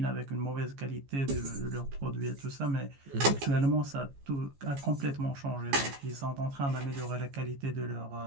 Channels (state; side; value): late; left; 14 ms